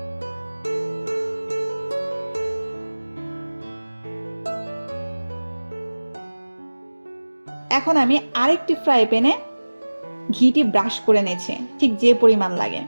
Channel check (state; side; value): inverted; both; correlation -1.00